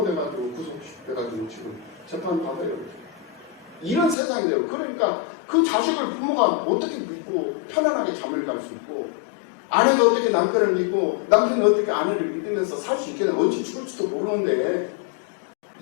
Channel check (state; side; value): drops out; right; at 4.2 s